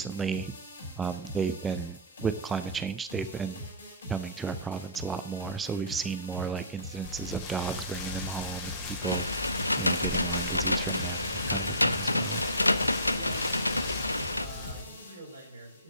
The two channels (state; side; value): inverted; both; correlation -0.31